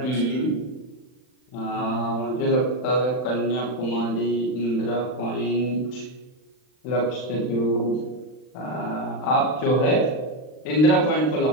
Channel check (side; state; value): right; late; 39 ms